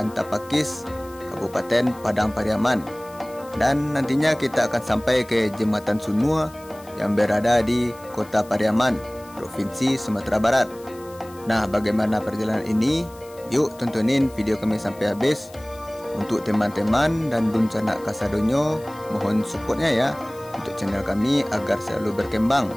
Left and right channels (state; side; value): noise; left; hiss, 23 dB below the sound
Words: Tapakis, Kabupaten Padang Pariaman. Dan nantinya kita akan sampai ke Jembatan Sunua yang berada di Kota Pariaman, Provinsi Sumatera Barat. Nah, bagaimana perjalanan ini? Yuk tontonin video kami sampai habis. Untuk teman-teman dan dun canak kasadonyo, mohon supportnya ya untuk channel kami agar selalu berkembang